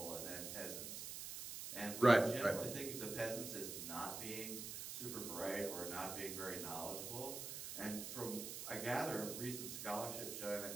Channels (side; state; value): right; noise; hiss, 6 dB below the sound